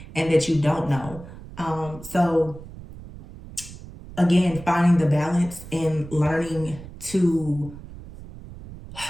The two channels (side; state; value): right; noise; rumble, 15 dB below the sound